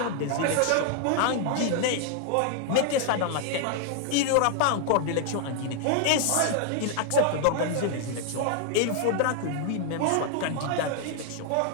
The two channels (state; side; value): different; both; correlation 0.00